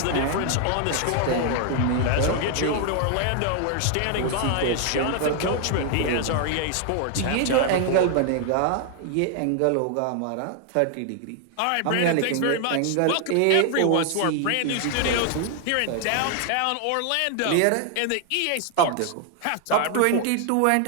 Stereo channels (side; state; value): both; different; correlation 0.00